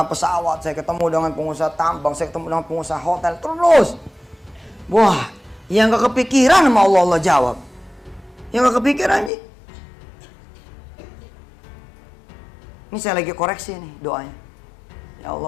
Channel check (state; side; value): drops out; right; at 9.3 s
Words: pesawat, saya ketemu dengan pengusaha tambang, saya ketemu dengan pengusaha hotel. Terus. Wah, yang gak kepikiran sama Allah jawab. Yang gak kepikiran nih. Ini saya lagi koreksi nih doanya. Ya